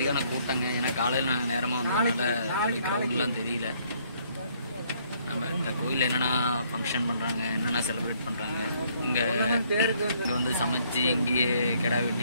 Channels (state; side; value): inverted; both; correlation -0.66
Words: கூட்டங்க. ஏன்னா காலையில் நாங்கள் நேரமாக வந்ததுனால கிரவுண்ட்லாம் தெரியல. நம்ம இந்த கோயிலில் என்னென்னா ஃபங்க்ஷன் பண்ணுறாங்க, என்னென்னா செலிப்ரேட் பண்ணுறாங்க, இங்கே வந்து சமைச்சு இங்கேயே கிடா